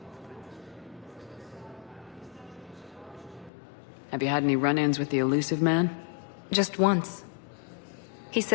Have you had any run-ins with the elusive man? Just once. He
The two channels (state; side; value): drops out; right; at 3.5 s